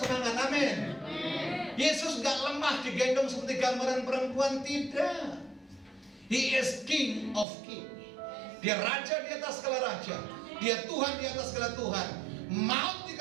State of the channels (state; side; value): drops out; left; at 7.5 s